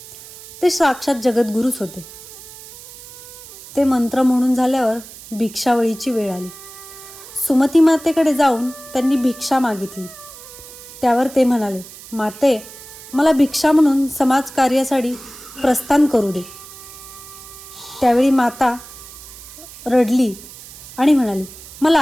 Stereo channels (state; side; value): noise; right; hiss, 17 dB below the sound